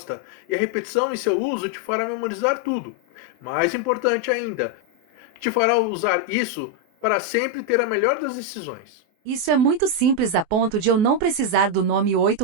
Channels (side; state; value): left; late; 24 ms